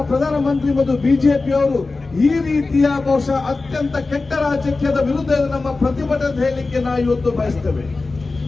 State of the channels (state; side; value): quieter; right; 3.7 dB